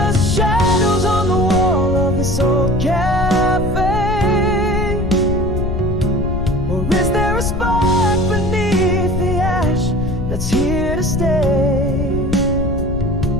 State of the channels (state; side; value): noise; left; rumble, 3 dB below the sound